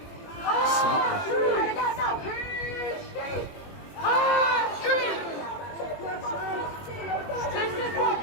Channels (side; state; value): right; late; 21 ms